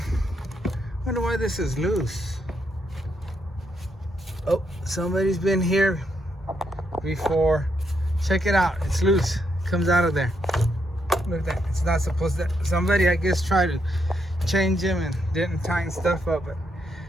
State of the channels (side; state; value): both; normal; correlation 0.78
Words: I wonder why this is loose. Oh, somebody's been here before. Check it out, it's loose. It comes out of there. Look at that. It's not supposed to. Somebody, I guess, tried to change them and didn't tighten stuff up.